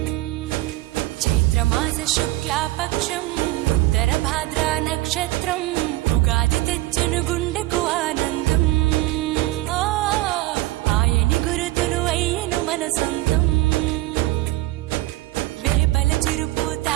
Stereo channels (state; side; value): quieter; left; 18.0 dB